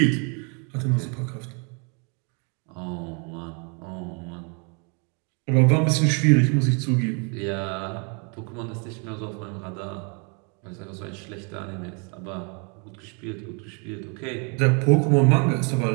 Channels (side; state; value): left; quieter; 35.7 dB